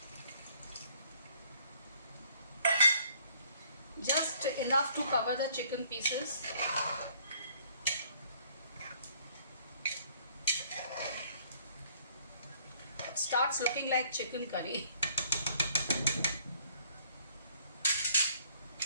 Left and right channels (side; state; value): both; inverted; correlation -0.62